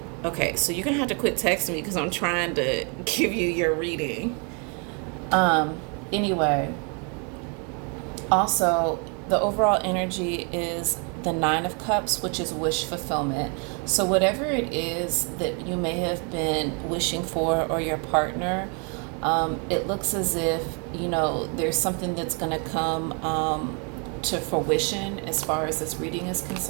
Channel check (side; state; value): left; quieter; 36.3 dB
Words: Okay, so you're gonna have to quit texting me because I'm trying to give you your reading. Anyway, also the overall energy is the Nine of Cups, which is wish fulfillment. So whatever it is that you may have been wishing for or your partner, it looks as if there's something that's gonna come to fruition as far as this reading is